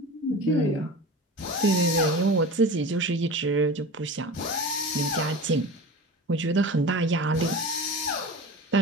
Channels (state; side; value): normal; both; correlation 0.33